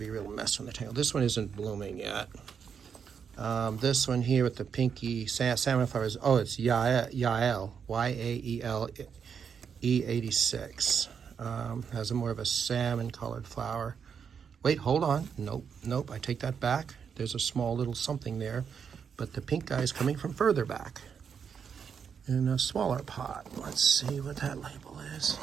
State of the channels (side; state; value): left; quieter; 6.9 dB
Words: real mess on the tail. This one isn't blooming yet. This one here with the pinky salmon flowers. Oh, it's Yael, Y-A-E-L, E86. Has more of a salmon-colored flower. Wait, hold on. Nope, I take that back. There's a small little something there, but the pink guy is coming from further back in a smaller pot. Let's see what that label is.